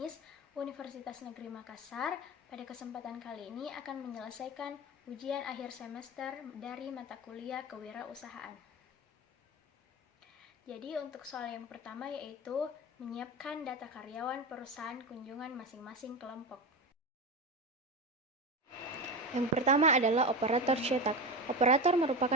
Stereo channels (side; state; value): both; normal; correlation 0.21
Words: Universitas Negeri Makassar. Pada kesempatan kali ini akan menyelesaikan ujian akhir semester dari mata kuliah kewirausahaan. Jadi untuk soal yang pertama yaitu menyiapkan data karyawan perusahaan kunjungan masing-masing kelompok. Yang pertama adalah operator cetak. Operator